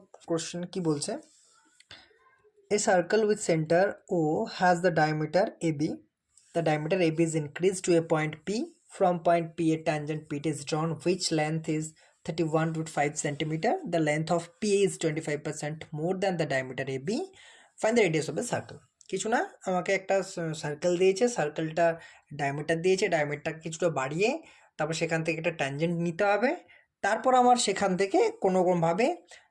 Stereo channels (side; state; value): both; identical; correlation 1.00